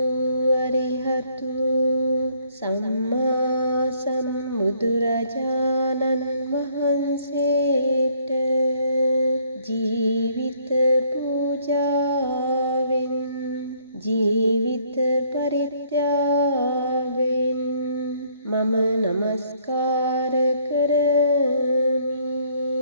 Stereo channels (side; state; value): both; inverted; correlation -0.65